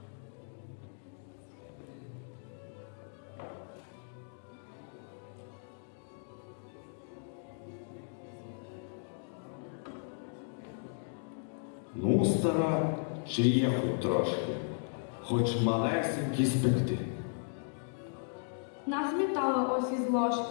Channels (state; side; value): silent; right; digital silence